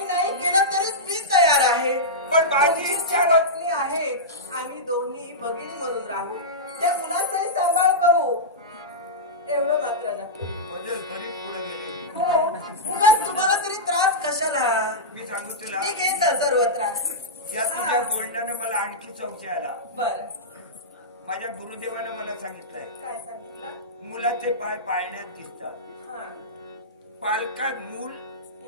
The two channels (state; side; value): normal; both; correlation -0.13